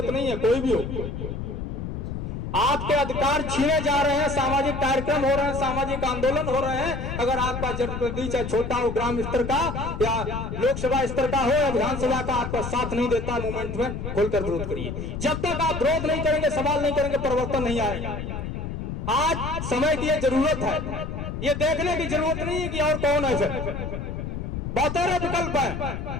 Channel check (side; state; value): left; noise; rumble, 5 dB below the sound